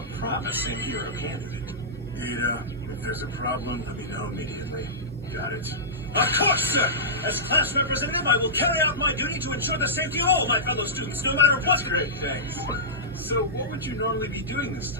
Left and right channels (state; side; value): normal; both; correlation -0.17